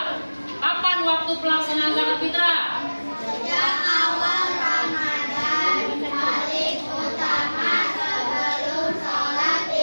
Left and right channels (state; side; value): inverted; both; correlation -1.00